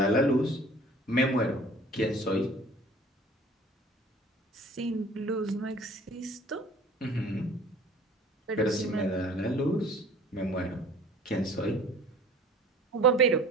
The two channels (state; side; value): normal; both; correlation 0.48